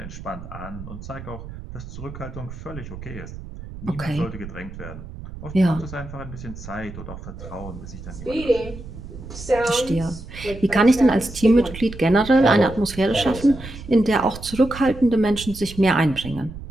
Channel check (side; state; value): right; noise; rumble, 12 dB below the sound